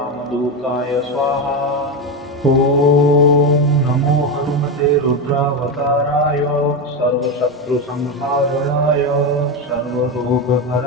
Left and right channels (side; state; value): both; normal; correlation 0.13